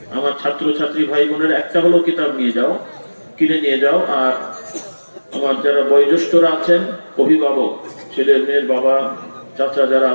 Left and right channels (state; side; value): inverted; both; correlation -1.00